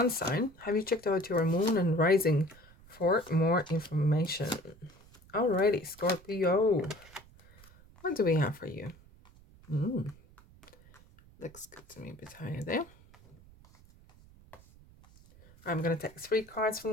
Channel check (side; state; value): right; noise; rumble, 24 dB below the sound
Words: sign, have you checked out your moon and rising for more information? Alrighty, Scorpio, what do we have for you? Looks good to me, a bit higher there. I'm going to take 3 cards from